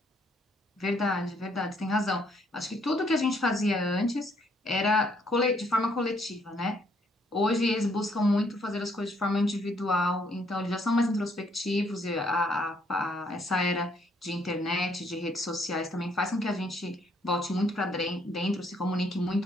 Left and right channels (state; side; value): normal; both; correlation 0.68